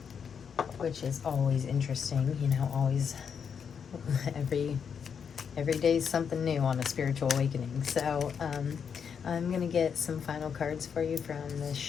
which is always interesting, you know, always, every day is something new on a spiritual awakening. So, I'm going to get some final cards for you from the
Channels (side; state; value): right; quieter; 7.0 dB